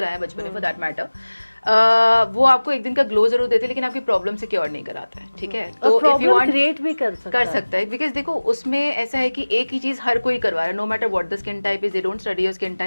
बचपन में फॉर दैट मैटर, वो आपको एक दिन का ग्लो जरूर देते हैं, लेकिन आपकी प्रॉब्लम से क्योर नहीं कराता है. ठीक है, तो इफ यू वांट क्रिएट भी कर सकता है, बिकॉज देखो उसमें ऐसा है कि एक ही चीज हर कोई करवा रहा है, no matter what the skin type is, they don't study your skin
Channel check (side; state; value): both; inverted; correlation -1.00